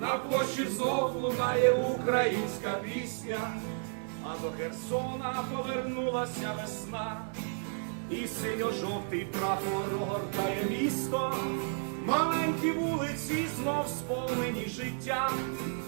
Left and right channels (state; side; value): silent; left; digital silence